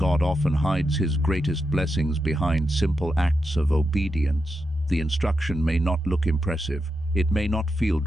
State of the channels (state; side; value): normal; both; correlation 0.86